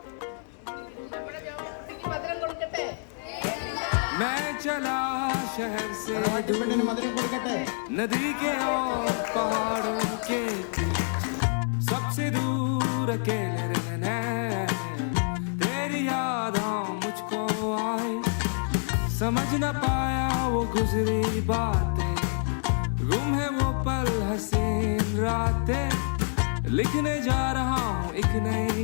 മധുരം കൊടുക്കട്ടെ. मैं चला शहर से പെണ്ണിന് മധുരം കൊടുക്കട്ടെ. नदी के और पहाड़ों के बीच सबसे दूर अकेले रहना है। तेरी यादें मुझको आई, समझ न पाया वो गुजरी बातें, गुम है वो पल हसीन रातें। लिखने जा रहा हूँ एक नई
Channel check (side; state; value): right; silent; digital silence